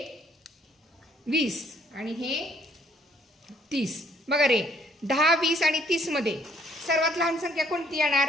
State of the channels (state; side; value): normal; both; correlation 0.65